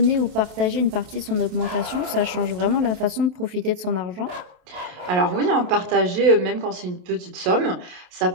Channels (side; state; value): left; late; 28 ms